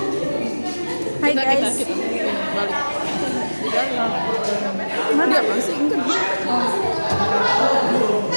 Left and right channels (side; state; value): both; inverted; correlation -1.00